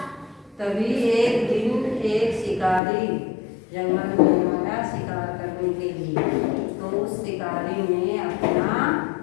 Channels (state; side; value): drops out; right; at 2.8 s